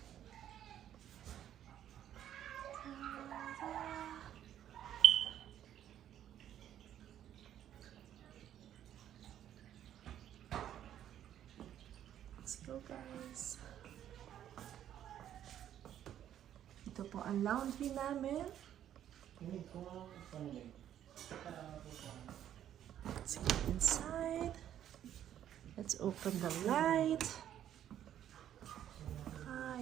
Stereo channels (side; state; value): left; quieter; 10.8 dB